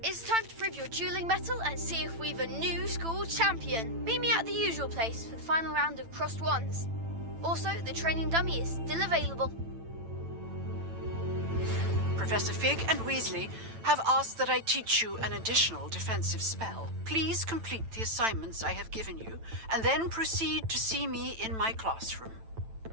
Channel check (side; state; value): left; late; 9.0 ms